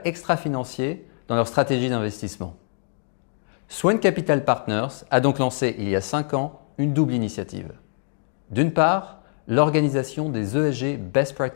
extra-financiers dans leur stratégie d'investissement. Swan Capital Partners a donc lancé il y a 5 ans une double initiative. D'une part, l'organisation des ESG Best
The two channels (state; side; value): silent; right; digital silence